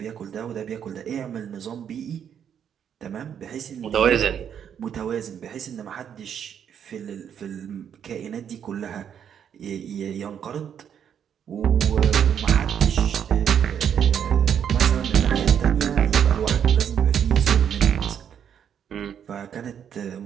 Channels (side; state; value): left; quieter; 8.5 dB